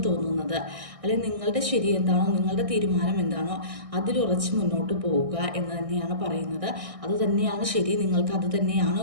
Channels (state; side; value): late; left; 1.6 ms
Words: തോന്നുന്നത്, അല്ലെങ്കിൽ നിങ്ങളുടെ ശരി എന്താണോ, നിങ്ങളുടെ തീരുമാനം എന്താണോ അതിലുറച്ച് മുന്നോട്ട് പോവുക എന്ന് തന്നെയാണ് പറയുന്നത്. അത് തന്നെയാണ് ശരി. നിങ്ങൾക്ക് അത് തന്നെയാണ്